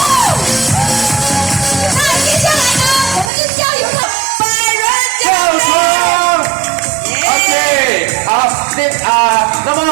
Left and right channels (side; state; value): left; drops out; at 3.3 s